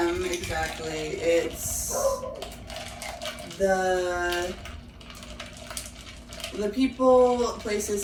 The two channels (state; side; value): identical; both; correlation 1.00